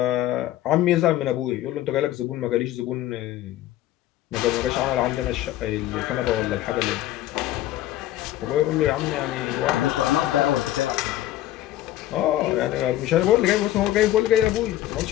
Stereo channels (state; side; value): quieter; right; 14.0 dB